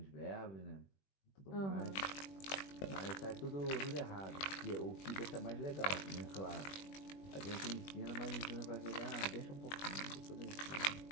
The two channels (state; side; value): late; right; 21 ms